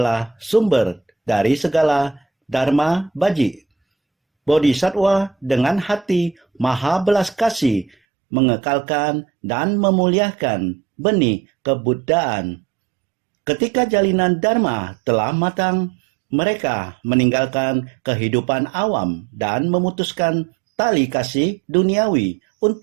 sumber dari segala dharma baji. Bodhisattva dengan hati maha belas kasih mengekalkan dan memuliakan benih kebudayaan. Ketika jalinan dharma telah matang, mereka meninggalkan kehidupan awam dan memutuskan tali kasih duniawi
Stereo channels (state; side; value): drops out; left; at 8.0 s